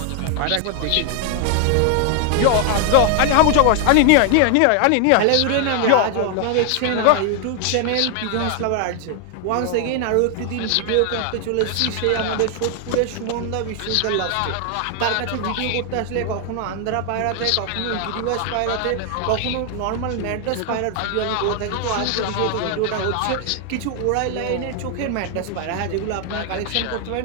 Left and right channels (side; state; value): both; different; correlation 0.00